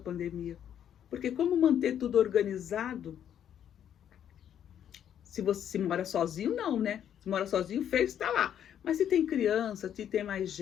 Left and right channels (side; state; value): right; quieter; 9.7 dB